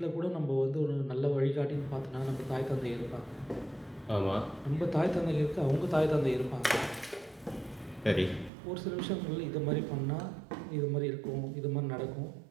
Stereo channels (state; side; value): drops out; left; at 8.5 s